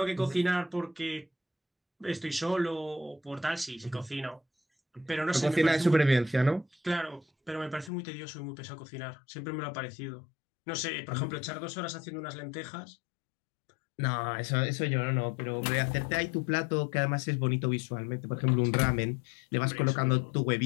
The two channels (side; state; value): right; drops out; at 7.9 s